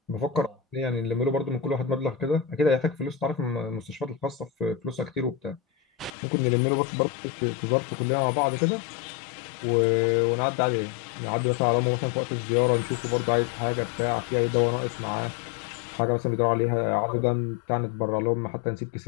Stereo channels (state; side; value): drops out; right; at 6.1 s